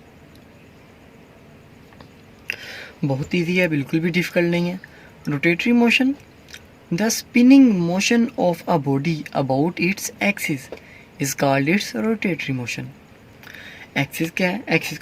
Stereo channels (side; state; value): both; identical; correlation 1.00